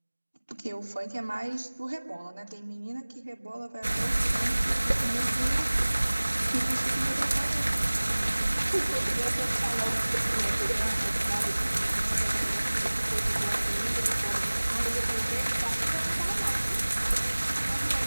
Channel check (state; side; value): inverted; both; correlation -1.00